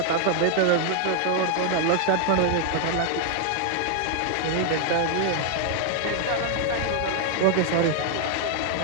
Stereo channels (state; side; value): different; both; correlation 0.00